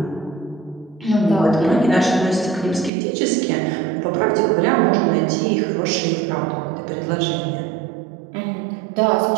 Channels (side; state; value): left; drops out; at 2.9 s